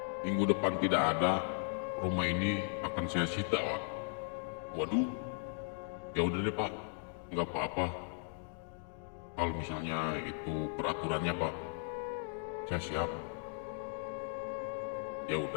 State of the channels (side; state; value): right; silent; 53 dB below the other